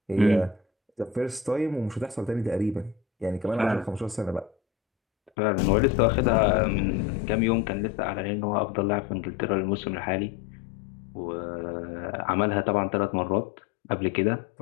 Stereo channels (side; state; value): right; drops out; at 5.3 s